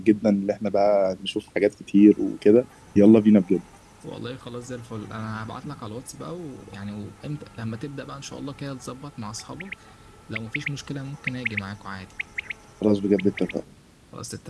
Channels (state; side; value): identical; both; correlation 1.00